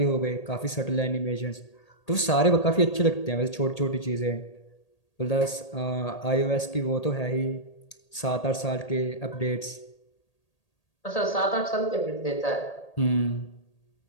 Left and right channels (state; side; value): late; right; 1.8 ms